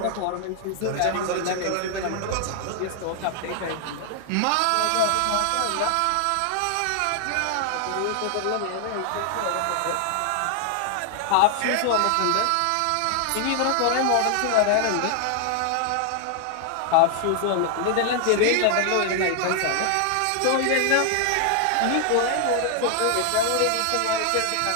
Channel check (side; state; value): both; different; correlation 0.00